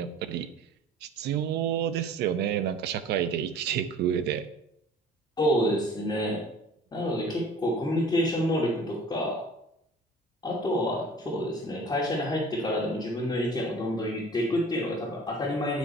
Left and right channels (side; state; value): both; normal; correlation 0.46